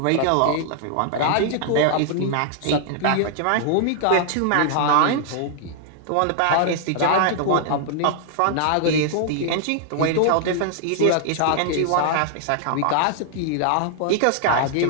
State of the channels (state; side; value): different; both; correlation -0.01